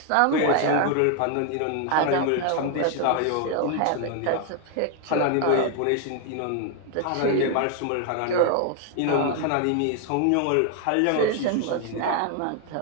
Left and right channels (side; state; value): both; different; correlation 0.00